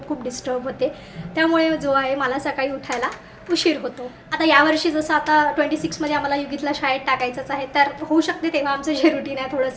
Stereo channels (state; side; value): identical; both; correlation 1.00